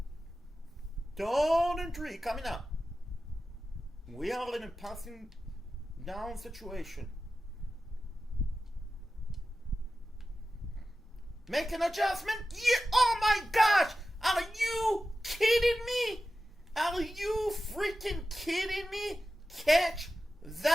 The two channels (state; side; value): normal; both; correlation 0.93